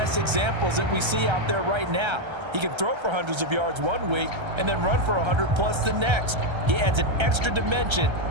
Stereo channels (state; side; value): late; left; 1.3 ms